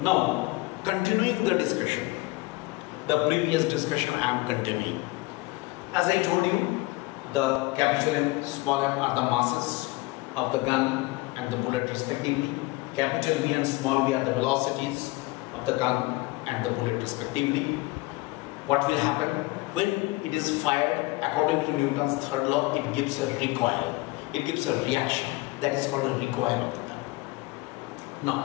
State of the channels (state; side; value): quieter; right; 22.3 dB